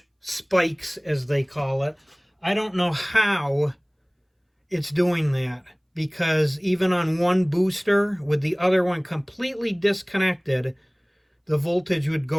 spikes, as they call it. I don't know how it's doing that, because even on one booster with the other one completely disconnected, the voltage would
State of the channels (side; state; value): both; identical; correlation 1.00